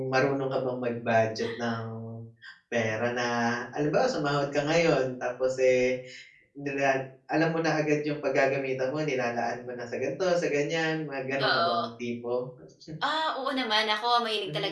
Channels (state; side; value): identical; both; correlation 1.00